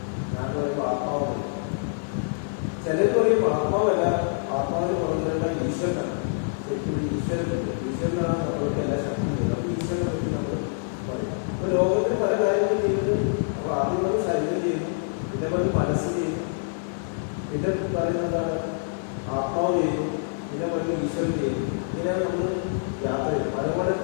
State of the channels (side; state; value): right; silent; 61 dB below the other